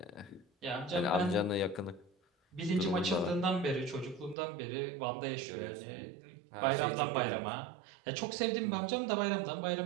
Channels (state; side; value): drops out; left; at 4.4 s